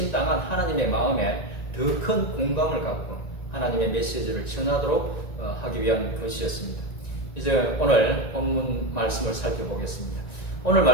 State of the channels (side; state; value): right; late; 1.9 ms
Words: 하나님의 마음에 더 큰 공감을 갖고 하나님의 메시지를 전하도록 하기 위한 것이었습니다. 이제 오늘 본문 말씀을 살펴보겠습니다. 오늘